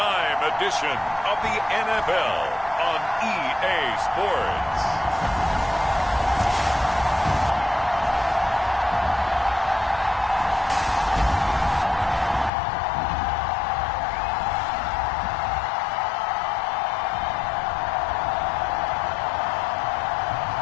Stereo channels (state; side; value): drops out; right; at 12.5 s